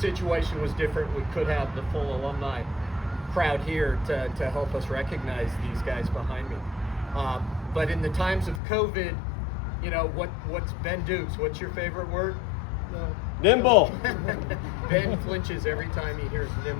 situation was different. We could have the full alumni crowd here to help us recognize these guys behind me. But in the times of COVID, you know, what's Ben Dukes? What's your favorite word? Nimble. Ben flinches every time he hears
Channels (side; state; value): right; drops out; at 8.6 s